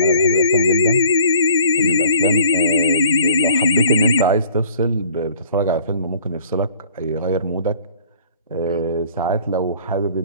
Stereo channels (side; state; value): both; inverted; correlation -0.52